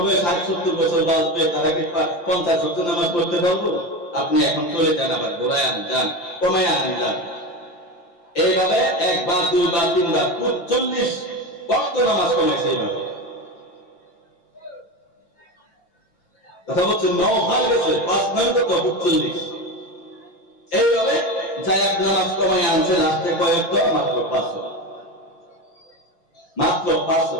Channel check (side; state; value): right; late; 5.8 ms